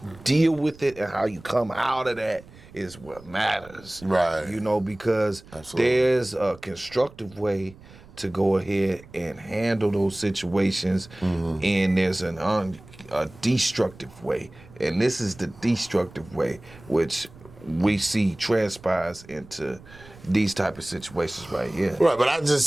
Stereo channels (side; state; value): right; noise; rumble, 21 dB below the sound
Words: deal with it and how you come out of that is what matters. Right. You know, because there's a constructive way to go ahead and handle those situations, and there's a destructive way. And this is the destructive way, which we see transpires into these type of situations right here. Right, but I